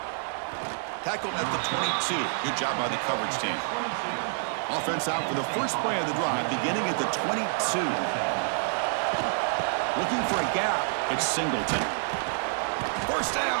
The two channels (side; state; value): left; silent; 56 dB below the other